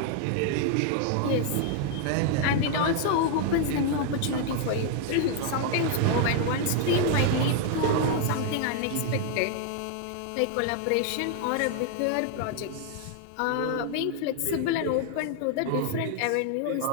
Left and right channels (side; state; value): both; different; correlation 0.00